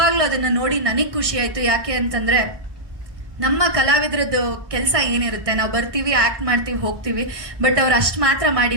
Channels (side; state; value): left; late; 1.6 ms